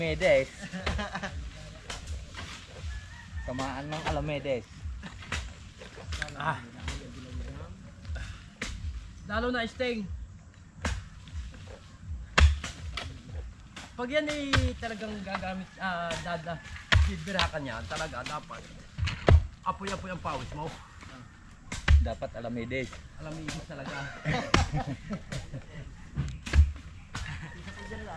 Kamaan ng Alamedes. Lalo na sting. Pag yan ay talagang gagamit, bibirakan yan, talaga dapat apoy-apoy ang pawis mo. Dapat Alamedes. Alam mo ibig talaga. Isa po dyan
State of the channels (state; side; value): identical; both; correlation 1.00